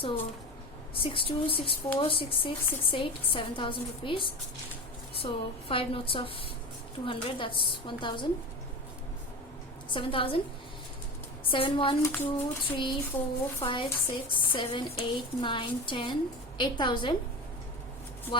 62, 64, 66, 68, 7,000 rupees. So 5 notes of 200, that's 1,000. 7,000. 7, 1, 2, 3, 4, 5, 6, 7, 8, 9, 10, 8,000.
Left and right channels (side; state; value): both; normal; correlation 0.28